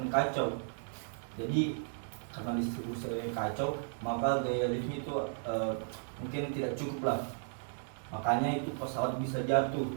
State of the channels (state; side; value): silent; left; 55 dB below the other